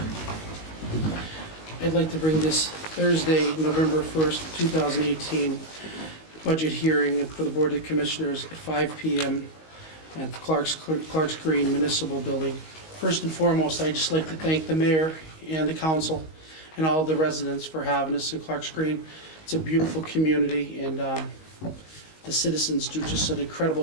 I'd like to bring this Thursday, November 1st, 2018, budget hearing for the Board of Commissioners at 5 p.m. at the Clark's Green Municipal Building. First and foremost, I'd just like to thank the mayor and the council and all the residents for having us in Clark's Green. It's a beautiful community, and the citizens do just an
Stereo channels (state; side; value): late; right; 19 ms